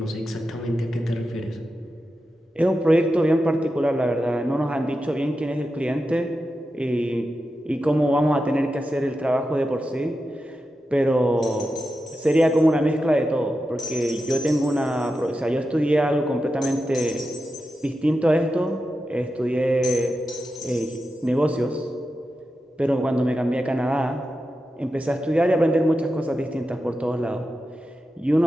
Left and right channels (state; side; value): normal; both; correlation 0.90